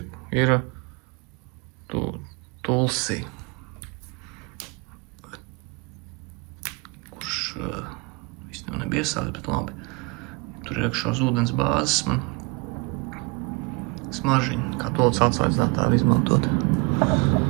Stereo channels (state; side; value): quieter; left; 27.4 dB